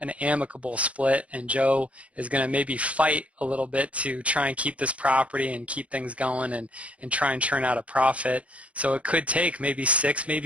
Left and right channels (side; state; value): left; late; 0.064 ms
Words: amicable split, and Joe is going to maybe fight a little bit to try and keep this property and keep things going and try and churn out a profit. So it could take maybe 6,